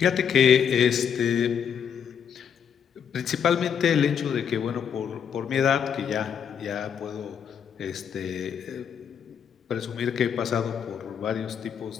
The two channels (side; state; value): right; quieter; 7.8 dB